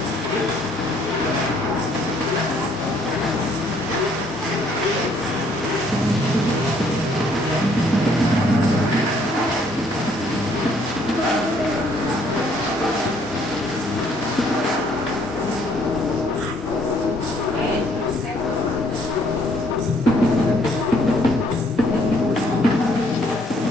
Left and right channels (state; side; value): normal; both; correlation 0.65